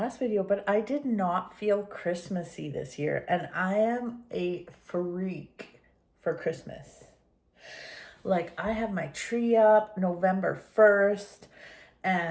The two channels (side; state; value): both; identical; correlation 1.00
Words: video, but I did not feel Christmassy this year, and I am a freak for Christmas. Like, I have my tree up November 1st,